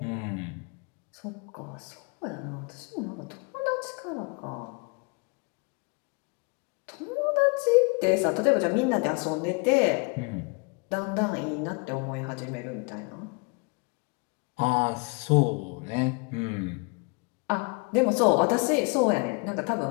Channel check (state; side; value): quieter; right; 31.2 dB